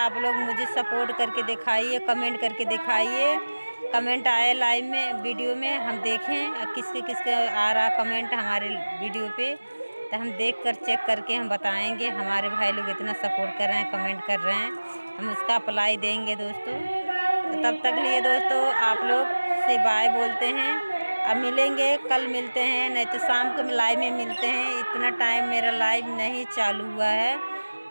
लोग मुझे सपोर्ट करके दिखाइए, कमेंट करके दिखाइए। कमेंट आए लाइव में वीडियो में, हम देखें किसके आ रहा कमेंट हमारे वीडियो पे, तो हम देख कर चेक करके हम बताएंगे। हमारे भाई लोग इतना सपोर्ट कर रहे हैं, कमेंट कर रहे हैं, हम उसका अप्लाई देंगे दोस्तों। तो तब तक लिए दोस्तों आप लोग से बाय बोलते हैं। अब मिलेंगे, कल मिलते हैं, नहीं तो शाम को लाइव में मिलते हैं। इतना टाइम मेरा लाइव नहीं चालू हुआ है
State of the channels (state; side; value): inverted; both; correlation -1.00